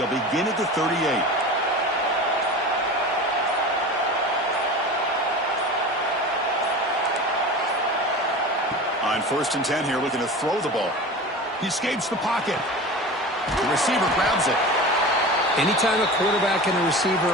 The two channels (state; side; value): normal; both; correlation 0.33